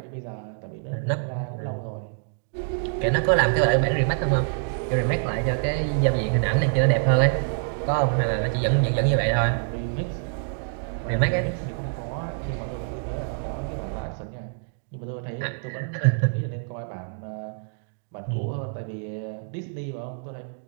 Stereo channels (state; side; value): silent; left; digital silence